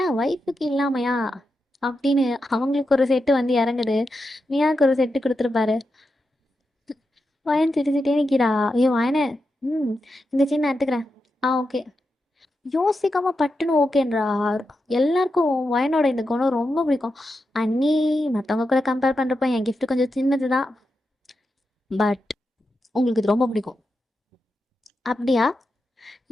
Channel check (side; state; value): both; normal; correlation 0.88